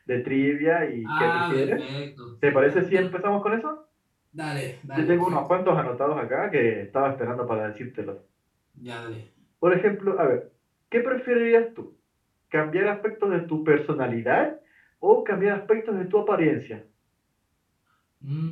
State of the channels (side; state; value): both; identical; correlation 1.00